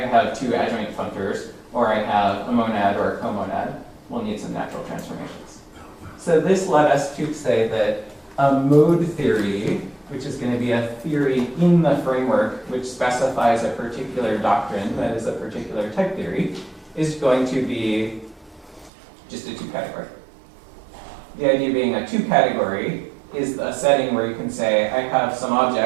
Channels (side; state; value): left; drops out; at 18.9 s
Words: have two adjoint functors, or I have a monad or a comonad. We'll need some natural transformations. So this led us to say that a mode theory, which is going to be a theory in the framework which specifies a particular doctrine, that is a particular type theory, is going to be just a 2-category. The idea being a 2-category is a setting where you can say, I have some